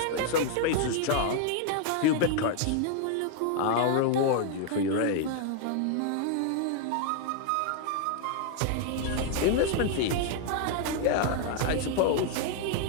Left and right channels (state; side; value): different; both; correlation 0.00